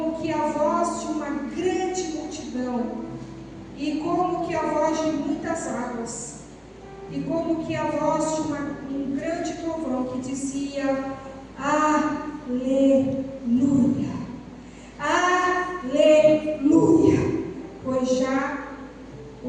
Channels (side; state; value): both; identical; correlation 1.00